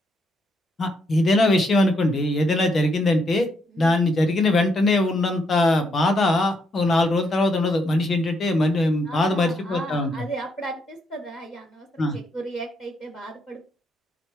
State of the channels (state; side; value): normal; both; correlation 0.76